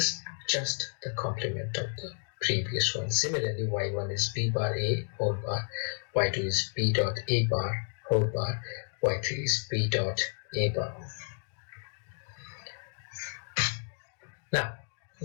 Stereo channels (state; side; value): silent; right; digital silence